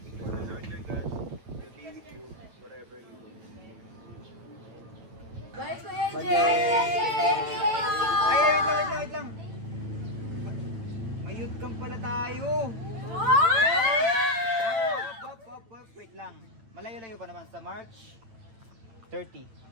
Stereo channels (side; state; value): left; late; 8.9 ms